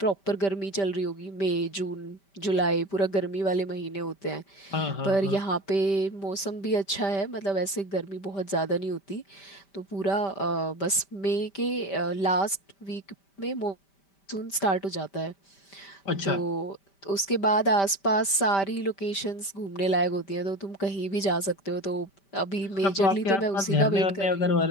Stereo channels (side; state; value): right; late; 5.1 ms